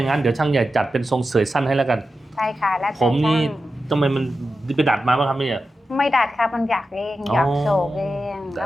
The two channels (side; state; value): both; normal; correlation 0.91